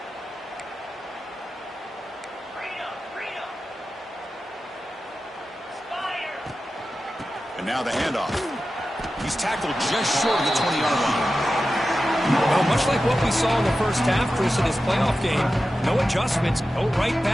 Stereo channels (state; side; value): normal; both; correlation 0.93